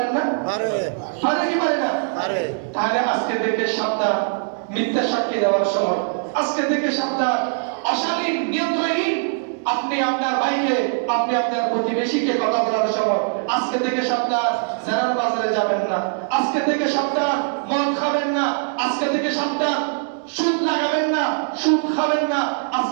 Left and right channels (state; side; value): silent; left; digital silence